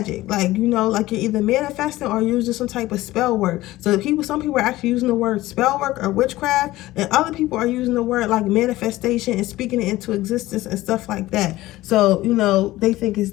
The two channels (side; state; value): right; quieter; 17.1 dB